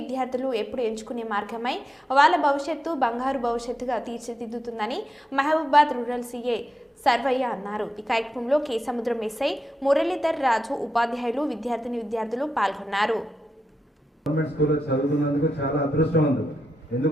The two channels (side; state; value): both; normal; correlation 0.88